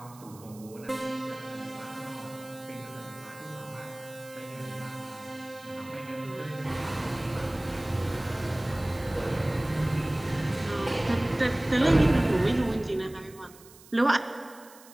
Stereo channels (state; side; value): noise; right; hiss, 22 dB below the sound